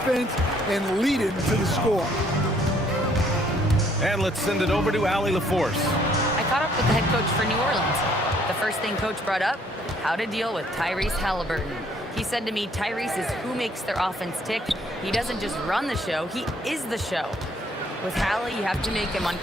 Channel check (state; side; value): normal; both; correlation 0.64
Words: and lead it to the score. And let's send it over to Allie LaForce. I caught up with the head coach for New Orleans. The first thing coach brought up, how to deal with Tyrese Halliburton. He said to me, Tyrese is who makes their offense tick. He doesn't just run the show, he is the show. With Hallie, you have to make him